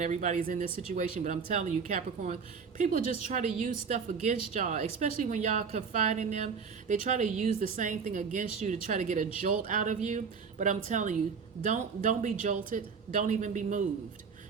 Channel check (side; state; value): left; quieter; 5.8 dB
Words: everybody's in this situation. But I'm telling you, Capricorns, people just try to use stuff against y'all, especially when y'all confide in them. They try to use the same thing against you to try to get a jolt out of you. But I'm telling you, don't be jolted. Don't even be moved.